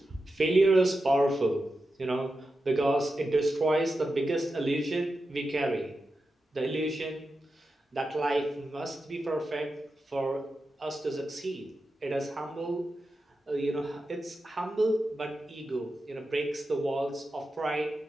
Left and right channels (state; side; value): normal; both; correlation 0.90